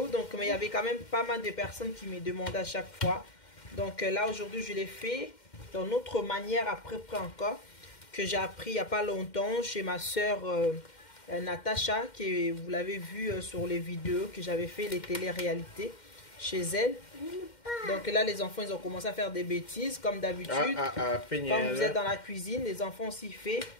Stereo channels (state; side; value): late; right; 2.1 ms